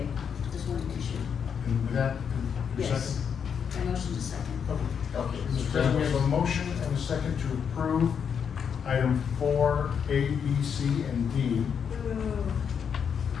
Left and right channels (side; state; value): right; quieter; 7.2 dB